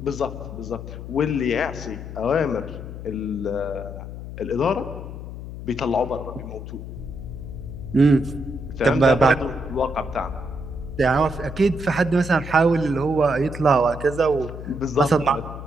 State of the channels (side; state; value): left; noise; hum, 10 dB below the sound